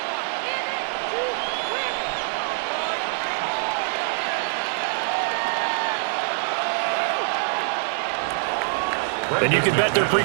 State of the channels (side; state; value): left; silent; digital silence